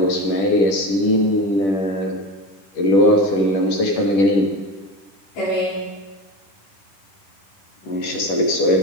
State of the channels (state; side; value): late; right; 10 ms